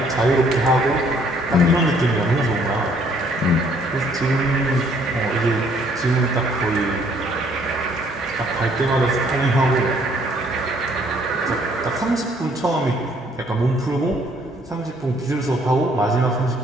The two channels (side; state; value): both; normal; correlation 0.64